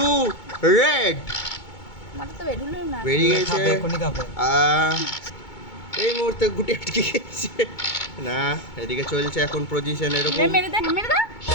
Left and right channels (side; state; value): right; late; 2.2 ms